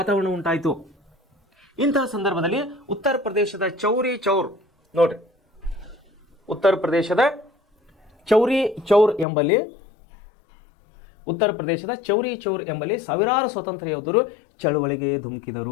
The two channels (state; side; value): drops out; right; at 9.2 s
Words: ಉಂಟಾಯಿತು. ಇಂತಹ ಸಂದರ್ಭದಲ್ಲಿ ಉತ್ತರ ಪ್ರದೇಶದ ಚೌರಿ ಚೌರ್ ನೋಡ್ರಿ, ಉತ್ತರ ಪ್ರದೇಶದ ಚೌರಿ ಚೌರ್ ಎಂಬಲ್ಲಿ ಸಾವಿರಾರು ಸ್ವಾತಂತ್ರ್ಯ ಯೋಧರು ಚಳುವಳಿಗೆ